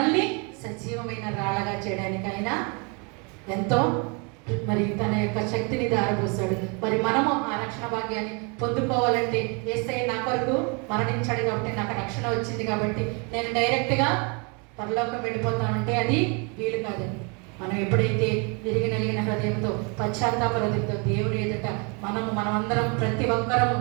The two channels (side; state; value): left; quieter; 33.1 dB